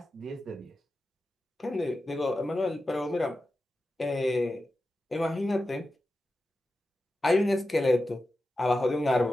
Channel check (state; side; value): normal; both; correlation 0.92